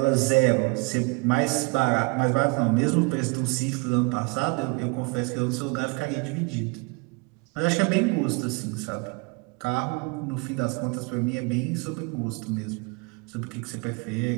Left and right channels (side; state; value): left; quieter; 30.4 dB